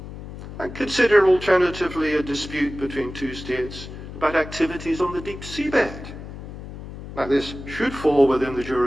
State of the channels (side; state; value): left; noise; hum, 12 dB below the sound